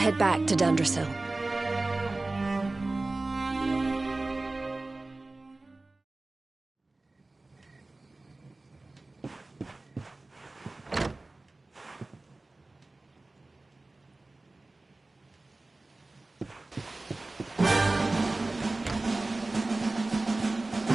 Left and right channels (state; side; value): quieter; left; 3.1 dB